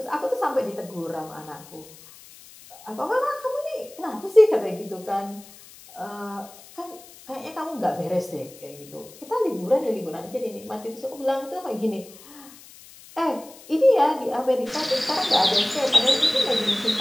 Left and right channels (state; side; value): noise; left; hiss, 21 dB below the sound